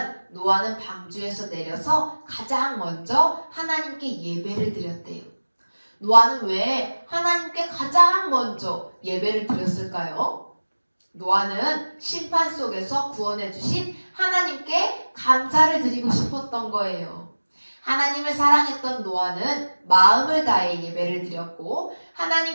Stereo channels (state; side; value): inverted; both; correlation -1.00